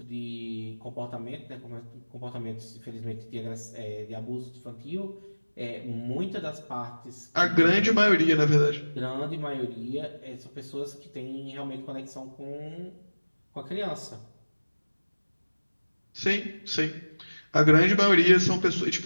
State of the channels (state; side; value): inverted; both; correlation -1.00